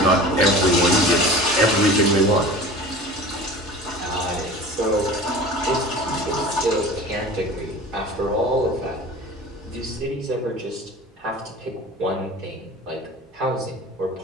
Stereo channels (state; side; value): normal; both; correlation 0.38